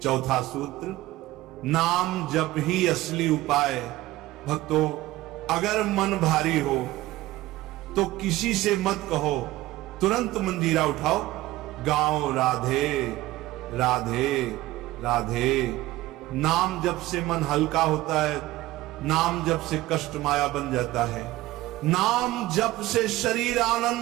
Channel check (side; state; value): left; quieter; 17.2 dB